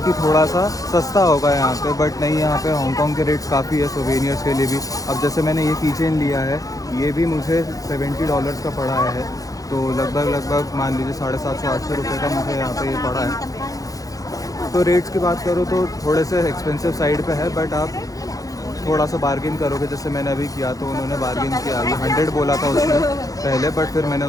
कि थोड़ा सा सस्ता होगा यहाँ पे, बट नहीं, यहाँ पे हांगकांग के रेट्स काफ़ी है सोवेनियर्स के लिए भी। अब जैसे मैंने ये कीचेन लिया है, ये भी मुझे $70 का पड़ा है, तो लगभग मान लीजिए 750-800 रुपये का मुझे यहाँ पे ये पड़ा है। तो रेट्स की बात करो तो थोड़े से एक्सपेंसिव साइड पे है, बट आप थोड़ा सा बार्गेन करोगे, जैसे मैंने अभी किया तो उन्होंने बार्गेन किया, अभी 100 बोला था उसने पहले, बट फिर मैंने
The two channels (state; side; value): late; right; 0.17 ms